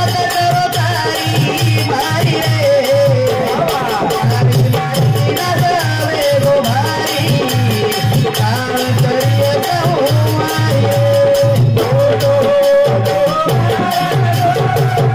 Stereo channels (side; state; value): both; identical; correlation 1.00